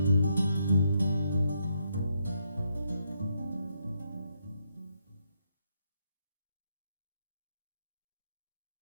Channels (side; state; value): both; inverted; correlation -0.77